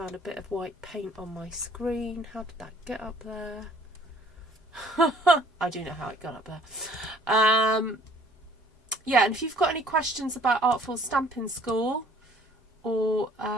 a bit of white paint on my screen. How did that get up there? I do know how it got up there. Yeah, and if you've got any questions about Artful Stampin School or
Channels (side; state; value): both; normal; correlation 0.57